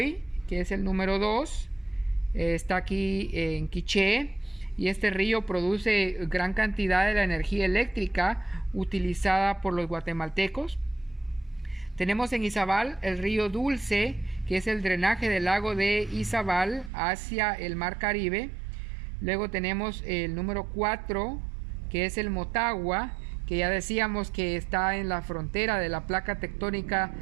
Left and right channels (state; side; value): drops out; left; at 16.9 s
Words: que es el número 2, está aquí en Quiché, y este río produce gran cantidad de la energía eléctrica utilizada por los guatemaltecos. Tenemos en Izabal el río Dulce, que es el drenaje del lago de Izabal hacia el mar Caribe. Luego tenemos el número 4, que es el Motagua, que ya decíamos que está en la frontera de la placa tectónica